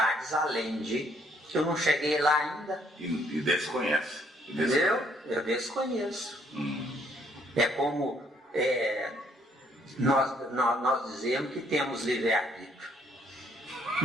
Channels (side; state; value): both; normal; correlation 0.67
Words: além de... Eu não cheguei lá ainda. E desconhece. Entendeu? Eu desconheço. É como nós dizemos que temos livre-arbítrio.